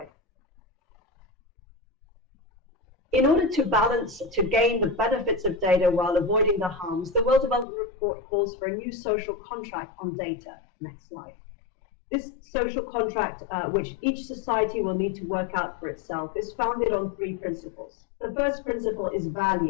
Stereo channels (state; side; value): drops out; right; at 7.7 s